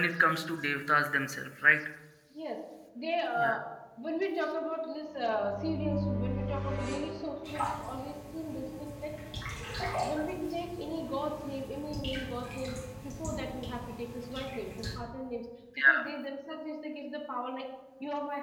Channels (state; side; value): identical; both; correlation 1.00